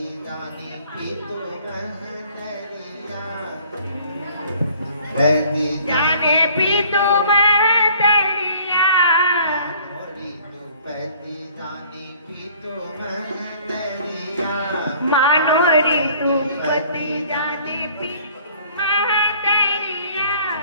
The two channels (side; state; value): both; inverted; correlation -0.55